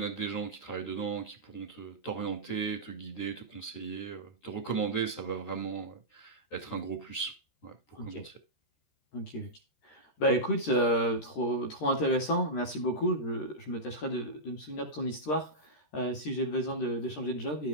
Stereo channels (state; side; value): late; right; 13 ms